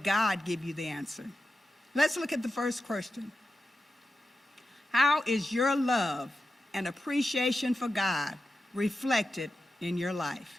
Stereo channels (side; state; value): both; normal; correlation 0.91